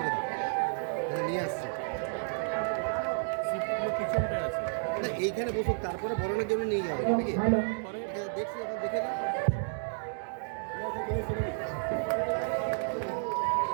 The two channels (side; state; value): left; silent; digital silence